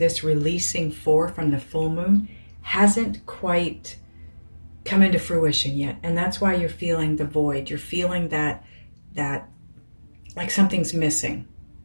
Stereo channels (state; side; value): inverted; both; correlation -1.00